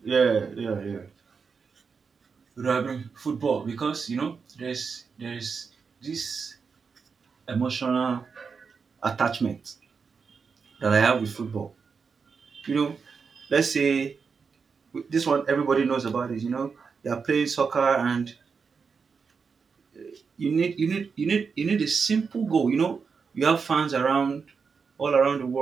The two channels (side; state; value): left; quieter; 5.5 dB